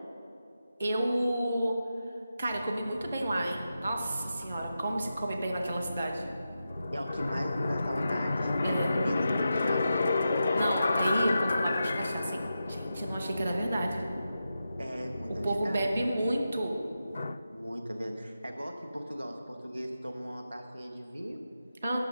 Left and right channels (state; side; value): inverted; both; correlation -0.90